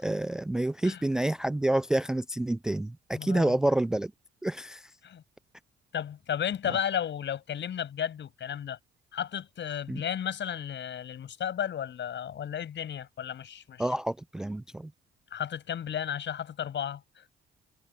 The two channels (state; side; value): normal; both; correlation 0.63